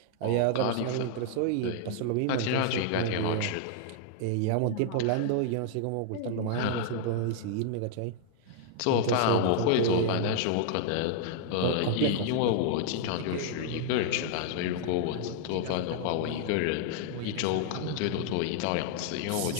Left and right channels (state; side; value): different; both; correlation 0.00